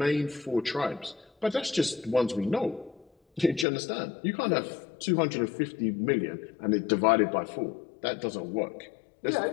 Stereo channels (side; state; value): right; drops out; at 3.7 s